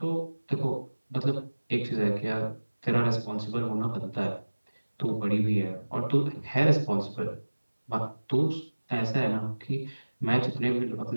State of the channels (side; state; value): both; inverted; correlation -1.00